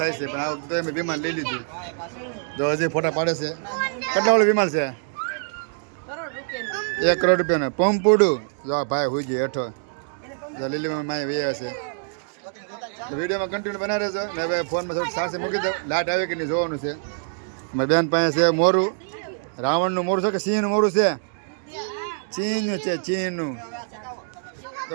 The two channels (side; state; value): left; silent; digital silence